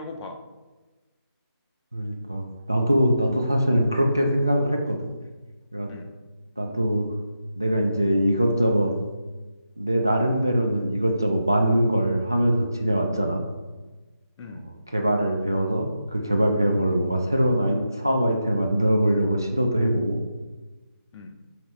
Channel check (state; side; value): inverted; both; correlation -0.87